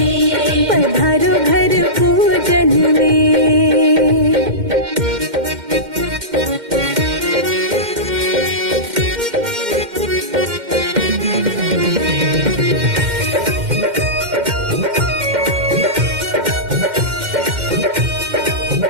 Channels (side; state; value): left; late; 2.1 ms